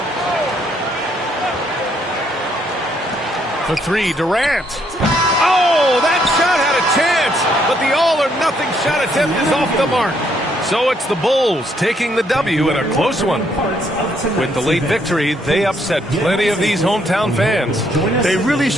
For three, Durant. Oh, that shot had a chance, but the all-or-nothing shot attempt is off the mark. So it's the Bulls taking the W in a close one. With the late victory, they upset plenty of these hometown fans. They really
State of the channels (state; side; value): normal; both; correlation 0.71